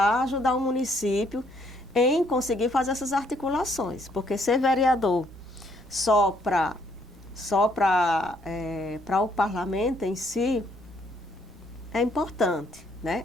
ajudar o município em conseguir fazer essas articulações, porque ser vereador só para o parlamento em si é importante, né?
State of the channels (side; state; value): both; normal; correlation 0.68